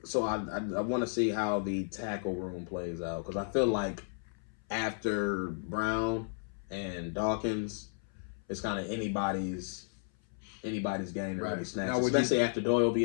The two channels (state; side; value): silent; right; 55 dB below the other